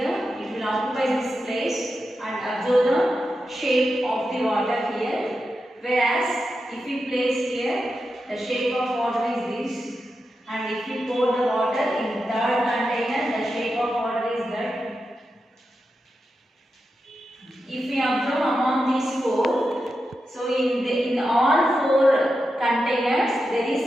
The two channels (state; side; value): normal; both; correlation 0.89